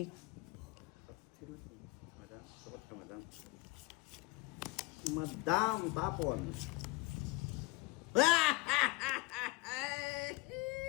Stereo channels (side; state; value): right; quieter; 24.9 dB